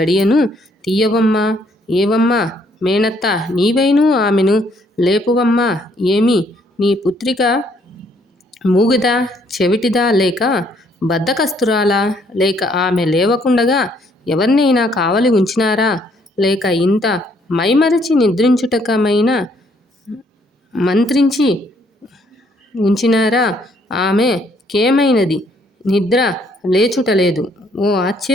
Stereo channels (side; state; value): both; normal; correlation 0.67